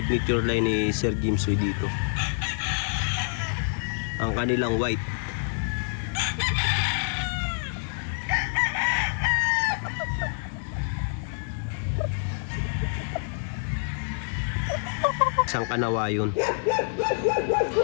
line ni Sir James Oy dito, ang kanilang white. Isang kanawayon.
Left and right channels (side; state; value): right; silent; 60 dB below the other